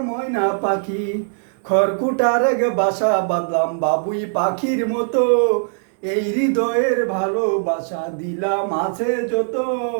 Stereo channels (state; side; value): silent; left; digital silence